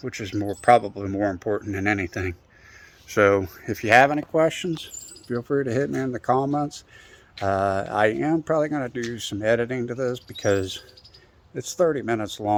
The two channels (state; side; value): identical; both; correlation 1.00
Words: which is probably more important than anything. So if you have any questions, feel free to hit me in the comments. I am probably going to do some editing to this because it's 30 minutes